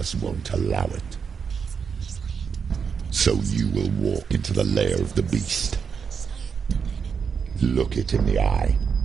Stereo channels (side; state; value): left; quieter; 6.3 dB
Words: won't allow it. So you will walk into the lair of the beast. Look it in the eye,